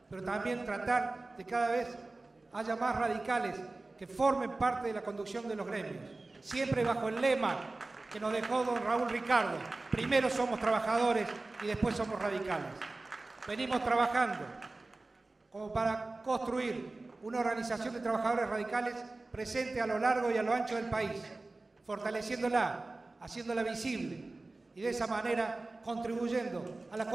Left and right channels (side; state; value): left; quieter; 3.2 dB